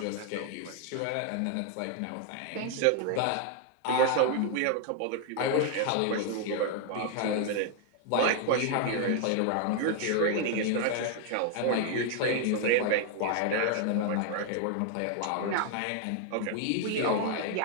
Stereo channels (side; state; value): both; different; correlation 0.00